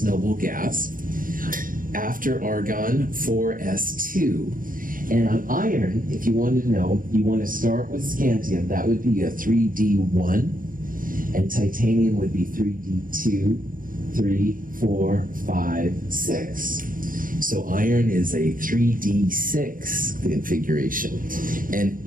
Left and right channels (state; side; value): late; left; 0.40 ms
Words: noble gas. After argon, 4s2. And on iron, if you wanted to know, you want to start with scandium. That would be a 3d1. And titanium would be 3d2, 3, 4, 5, 6. So iron is a 3d6 configuration. And